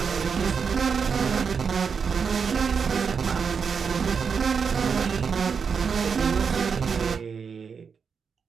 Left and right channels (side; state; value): left; quieter; 6.1 dB